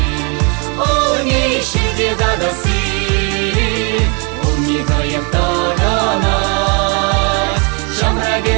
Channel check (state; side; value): quieter; left; 34.3 dB